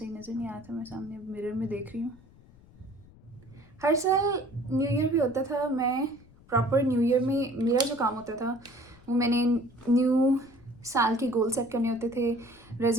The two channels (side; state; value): left; noise; rumble, 25 dB below the sound